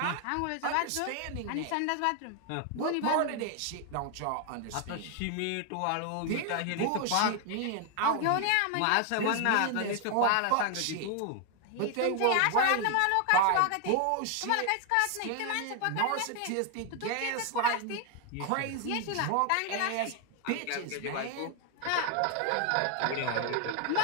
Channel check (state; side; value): different; both; correlation 0.00